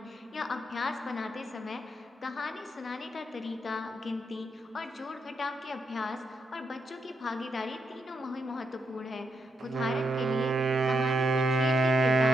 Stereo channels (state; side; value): normal; both; correlation 0.81